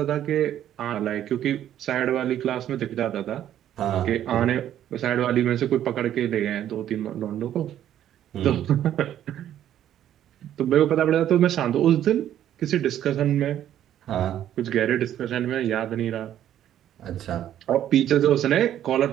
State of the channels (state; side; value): quieter; left; 11.2 dB